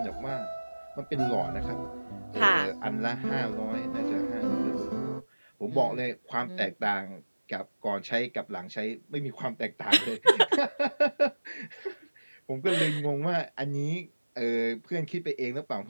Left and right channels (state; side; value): inverted; both; correlation -1.00